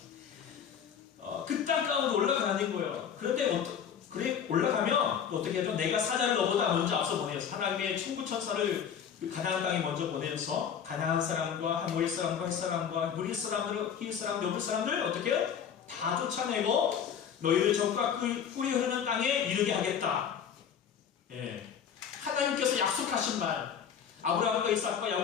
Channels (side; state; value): right; quieter; 8.0 dB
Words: 그 땅 가운데 올라가는 거예요. 그런데 그래 올라가면 또 어떻게 하죠? 내가 사자를 너보다 먼저 앞서 보내서 하나님의 천부 천사를 가나안 땅에 먼저 보내서 가나안 사람과 하모리 사람과 헷 사람과 무리 사람들, 히윗 사람, 여부 사람들 어떻게 해요? 다 쫓아내고 너희를 적과 꿀이 흐르는 땅에 이르게 하겠다. 예. 하나님께서 약속하신 말, 아브라함과 이삭과